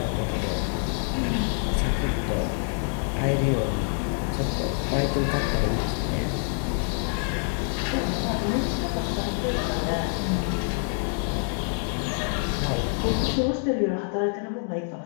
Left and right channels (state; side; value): silent; right; 57 dB below the other